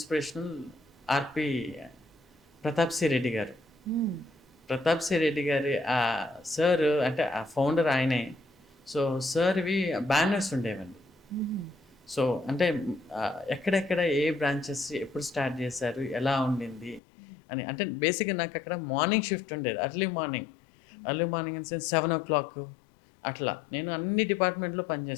ఆర్పి ప్రతాప్ సి రెడ్డి గారు. ప్రతాప్ సి రెడ్డి గారి ఆ సార్ అంటే ఆ ఫౌండర్ ఆయనే. సో సార్వి బ్యానర్స్ ఉండేవండి. సో అంటే ఎక్కడెక్కడ ఏ బ్రాంచెస్ ఎప్పుడు స్టార్ట్ చేశారు, ఎలా ఉండింది అని. అంటే బేసిక్గా నాకు అక్కడ మార్నింగ్ షిఫ్ట్ ఉండేది, early morning in sense 7 o'clock అట్లా. నేను అన్ని డిపార్ట్మెంట్లో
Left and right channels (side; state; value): right; drops out; at 17.0 s